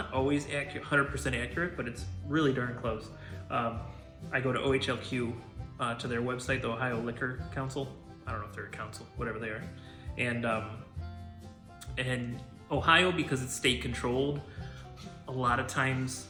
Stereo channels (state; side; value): identical; both; correlation 1.00